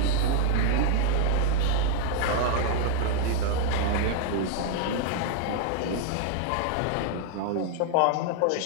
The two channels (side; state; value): both; different; correlation 0.00